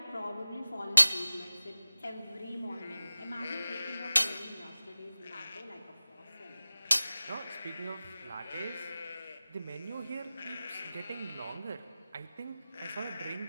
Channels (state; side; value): inverted; both; correlation -0.97